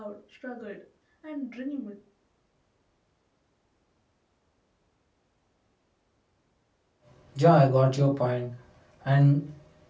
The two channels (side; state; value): both; identical; correlation 1.00